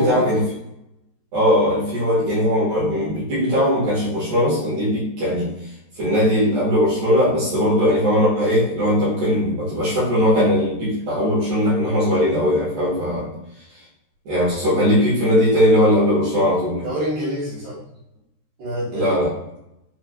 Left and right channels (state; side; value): late; left; 13 ms